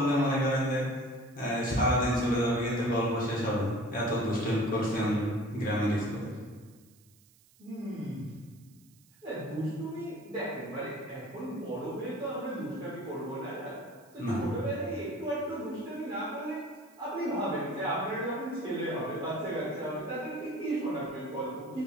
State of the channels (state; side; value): noise; right; hiss, 29 dB below the sound